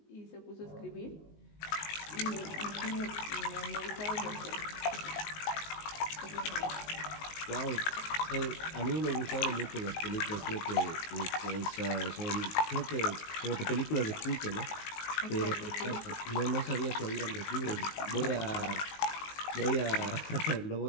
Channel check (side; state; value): right; late; 19 ms